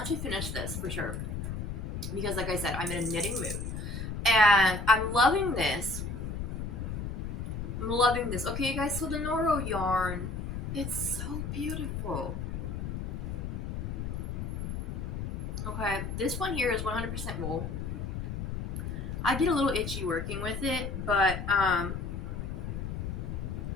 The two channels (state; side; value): noise; left; rumble, 4 dB below the sound